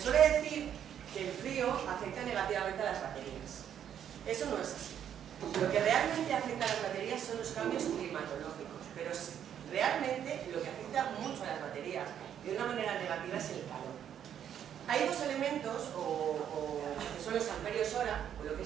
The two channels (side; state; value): left; quieter; 9.4 dB